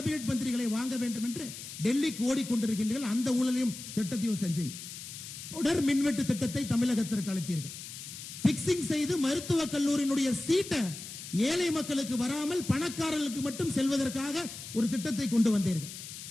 மந்திரிகளை வாங்க வேண்டும் என்று டெல்லிக்கு ஓடிக்கொண்டிருக்கின்றீர்கள். அந்த ஊழலையும் திட்டத்தையும் செஞ்சீங்க. தொடர் மின்வெட்டு திட்டத்தை தமிழகத்திற்கு அளித்தீர்கள். பிக்சிங் செய்து மருத்துவக் கல்லூரியினுடைய சீட்டை ஏழை மக்களுக்கு வராமல் பணக்காரர்களுக்கு மட்டும் செல்வதற்காக ஒரு திட்டத்தை கொண்டு வந்தீர்கள்.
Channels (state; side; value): noise; left; hiss, 11 dB below the sound